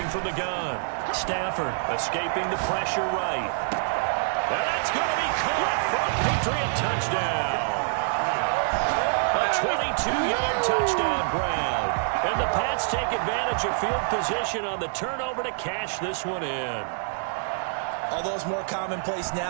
from the gun. Stafford escaping the pressure right. And that's going to be caught for a Patriot touchdown. A 22-yard touchdown grab. And the Pats take advantage of field position on the turnover to cash this one in. Although it's more commonplace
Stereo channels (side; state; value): left; silent; digital silence